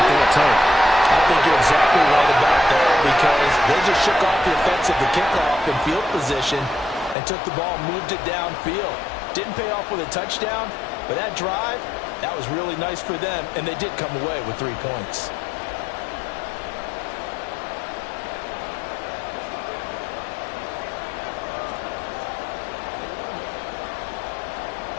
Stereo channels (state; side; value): drops out; right; at 7.2 s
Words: they'll take. I think you're exactly right about that, because they just shook off the effects of the kickoff in field position and took the ball and moved it downfield. Didn't pay off with a touchdown, but that drive, that was really nice for them, and they did come away with 3 points.